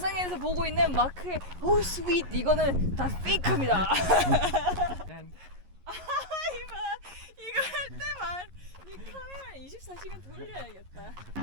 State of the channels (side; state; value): left; late; 11 ms